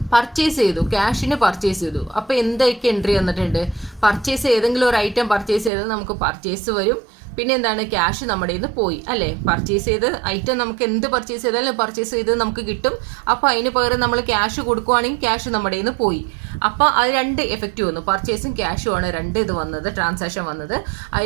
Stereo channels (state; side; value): drops out; left; at 5.7 s